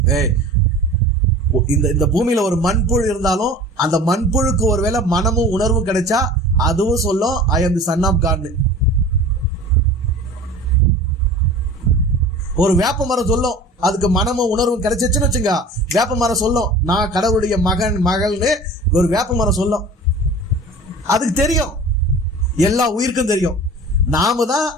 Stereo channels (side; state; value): both; normal; correlation 0.40